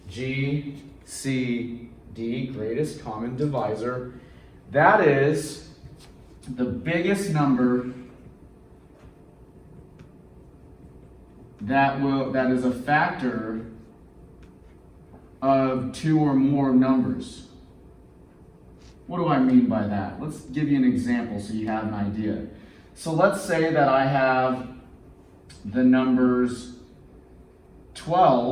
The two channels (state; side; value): identical; both; correlation 1.00